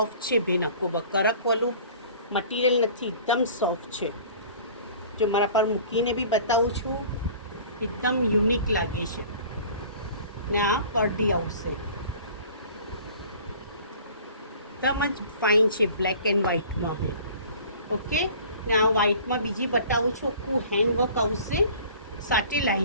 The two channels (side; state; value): both; inverted; correlation -0.46